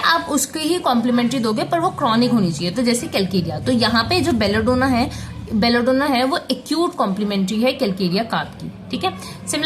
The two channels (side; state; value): both; identical; correlation 1.00